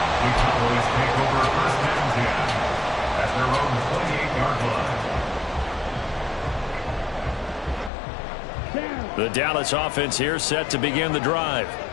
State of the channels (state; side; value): drops out; right; at 7.9 s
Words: The Dallas offense here set to begin the drive.